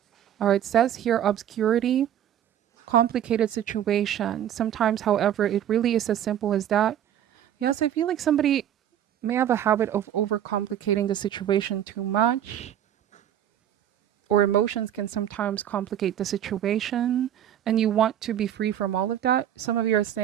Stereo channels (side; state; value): left; quieter; 10.5 dB